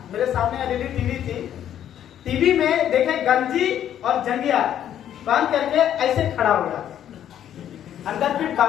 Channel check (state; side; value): quieter; right; 10.5 dB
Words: मेरे सामने एलईडी टीवी थी, टीवी में देखे गंजी और जंगिया बांध करके ऐसे खड़ा हो गया, अंदर फिर